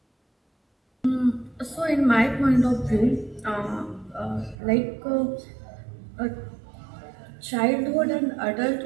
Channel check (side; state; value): left; drops out; at 4.5 s